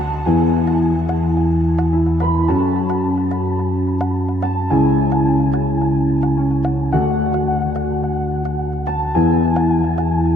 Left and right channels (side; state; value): both; normal; correlation 0.71